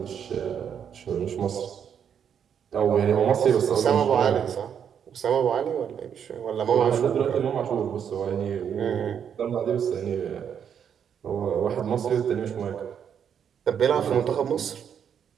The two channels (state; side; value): quieter; left; 8.1 dB